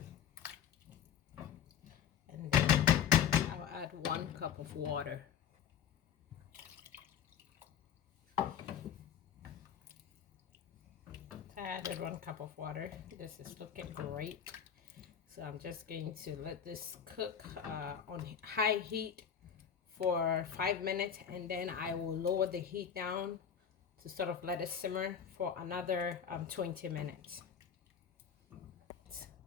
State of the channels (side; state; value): right; quieter; 8.3 dB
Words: And then I'll add 1 cup of water. I added 1 cup of water. This is looking great. So I'm just going to let this cook on high heat for 5 minutes, and then I will lower the heat down to sort of let it simmer for another 20 minutes.